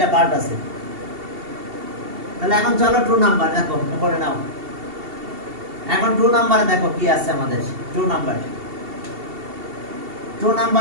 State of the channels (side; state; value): left; late; 2.7 ms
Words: পার্ট আছে। তাহলে এখন চলো 2 নাম্বার দেখো করে নাও। এখন 2 নম্বরে দেখো কি আছে আমাদের। 2